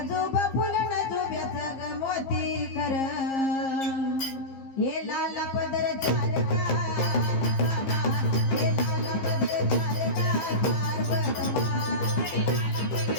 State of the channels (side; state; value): right; late; 15 ms